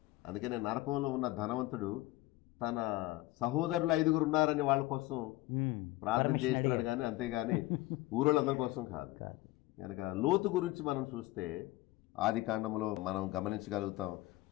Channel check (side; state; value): right; quieter; 18.6 dB